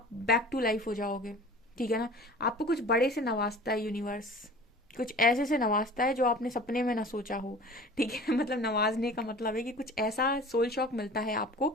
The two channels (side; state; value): both; normal; correlation 0.42